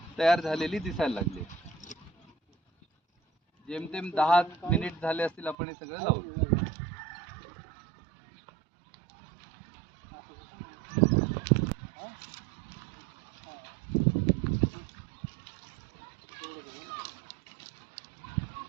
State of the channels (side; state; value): left; drops out; at 5.6 s